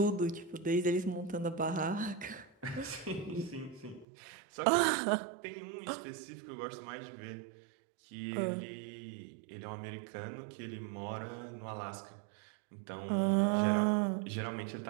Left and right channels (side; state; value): left; drops out; at 4.0 s